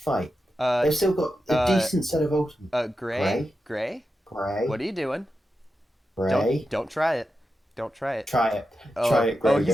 they've still got a decent set of ultimates. Gray? What Gray. are you doing? Gray. Don't try it. Don't try it. Try it. Try Oh, it, Gray. he's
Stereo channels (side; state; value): both; normal; correlation 0.90